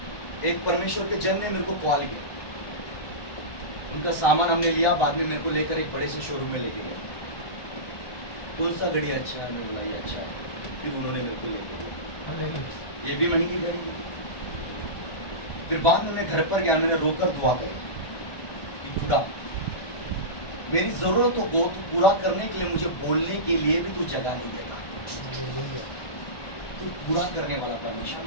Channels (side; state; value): right; late; 1.1 ms